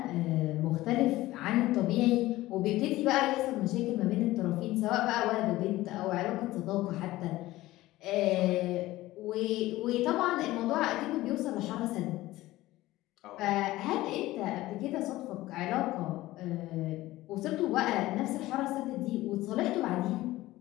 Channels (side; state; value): right; quieter; 17.1 dB